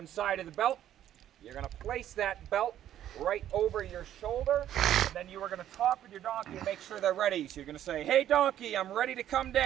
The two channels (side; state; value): left; quieter; 11.4 dB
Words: side of the belt. You're going to place that belt right over your shoulder, and then you are going to talk with your donkey and make sure they're ready. So you're going to say, "Hey donkey, I'm ready to come